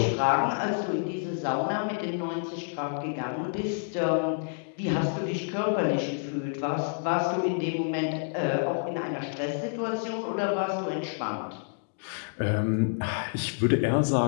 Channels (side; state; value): right; silent; digital silence